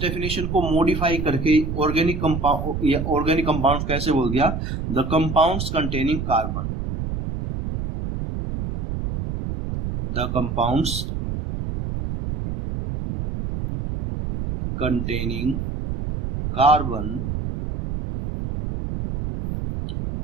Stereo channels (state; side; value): noise; right; rumble, 4 dB below the sound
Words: डेफिनेशन को मॉडिफाई करके ऑर्गेनिक कंपाउंड या ऑर्गेनिक कंपाउंड कैसे बोल दिया? The compounds containing carbon. The compounds containing carbon